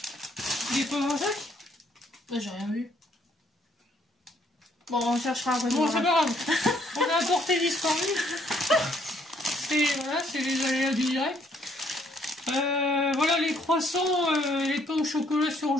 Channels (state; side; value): normal; both; correlation 0.67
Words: Il est pas dans un sac? J'ai rien vu. Bon, on cherchera après. Bon, c'est pas grave. On a apporté disparu. C'est les aléas du direct. Voilà les croissants, les pains au chocolat